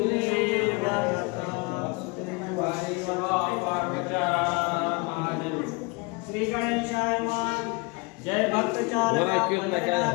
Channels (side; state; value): right; quieter; 28.6 dB